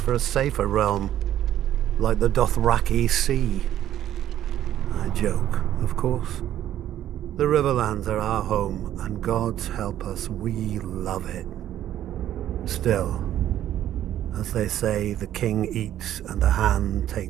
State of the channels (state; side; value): quieter; left; 11.8 dB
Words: a safer realm, like the Dothraki Sea. I joke, of course. The Riverlands are our home, and God's help us, we love it. Still, as they say, the king eats and the hand